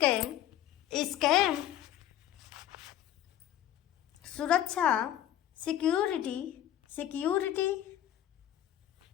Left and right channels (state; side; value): quieter; right; 11.7 dB